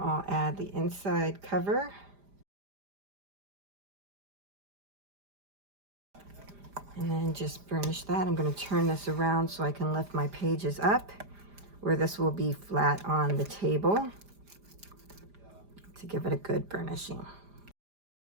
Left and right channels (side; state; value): left; late; 5.0 ms